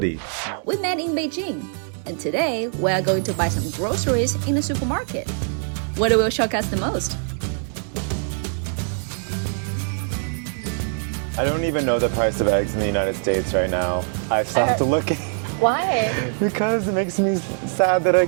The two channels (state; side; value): silent; left; 64 dB below the other